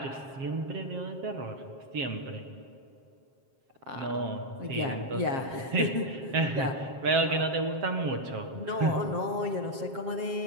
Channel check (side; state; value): left; late; 7.5 ms